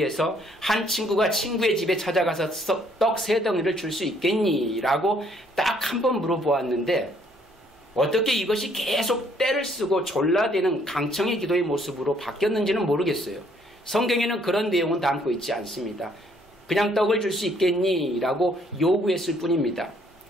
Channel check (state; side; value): normal; both; correlation 0.65